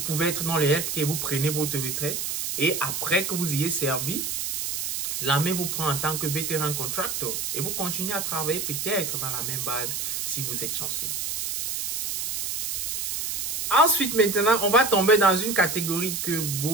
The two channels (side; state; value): right; noise; hiss, 2 dB below the sound